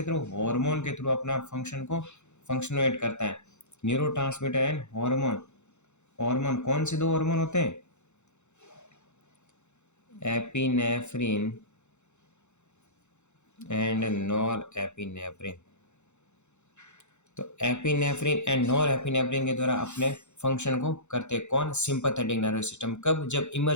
थ्रू, हार्मोन के थ्रू अपना फंक्शन को फंक्शनुएट करता है। न्यूरोट्रांसमीटर एंड हार्मोन, हार्मोन कौन से दो हार्मोन होते हैं, एपिनेफ्रिन एंड नॉर एपिनेफ्रिन। तो एपिनेफ्रिन एंड नॉर एपिनेफ्रिन के द्वारा अपने फंक्शन को करते हैं कौन, सिंपैथेटिक नर्वस सिस्टम। कब, जब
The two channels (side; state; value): right; late; 0.83 ms